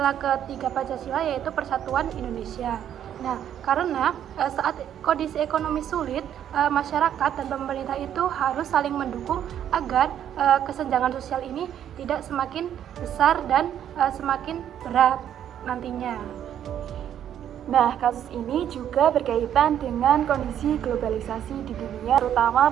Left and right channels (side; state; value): left; quieter; 10.1 dB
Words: ketiga Pancasila, yaitu persatuan Indonesia. Nah, karena saat kondisi ekonomi sulit, masyarakat dan pemerintah itu harus saling mendukung agar kesenjangan sosial ini tidak semakin besar dan semakin berat nantinya. Nah, kasus ini juga berkaitan dengan kondisi globalisasi di dunia, terutama